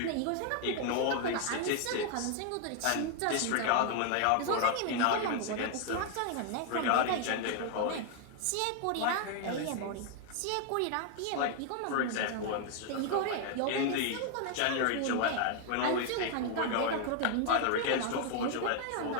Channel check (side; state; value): both; different; correlation 0.00